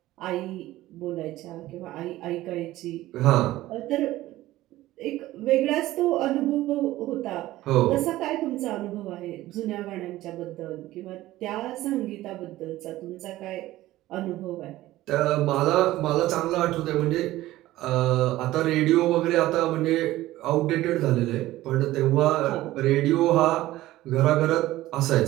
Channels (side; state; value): left; quieter; 16.1 dB